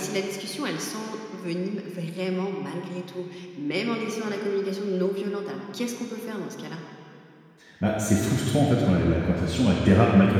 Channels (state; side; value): identical; both; correlation 1.00